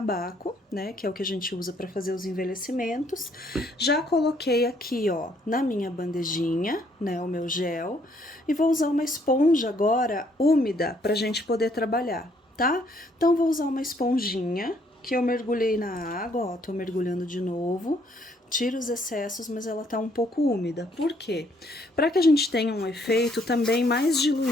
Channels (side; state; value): both; normal; correlation 0.67